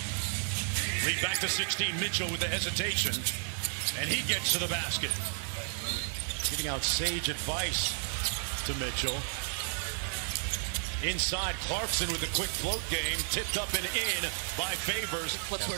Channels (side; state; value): left; silent; 56 dB below the other